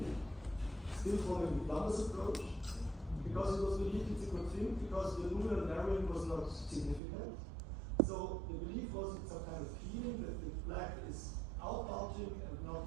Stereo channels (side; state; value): left; drops out; at 7.0 s